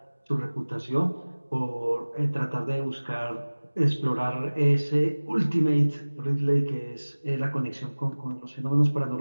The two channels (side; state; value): both; inverted; correlation -1.00